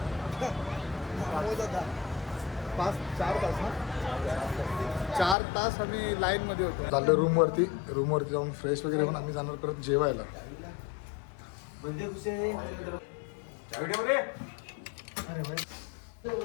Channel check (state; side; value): drops out; right; at 5.4 s